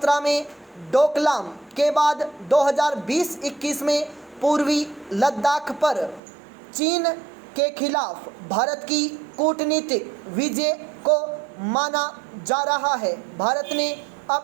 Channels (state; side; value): drops out; left; at 6.2 s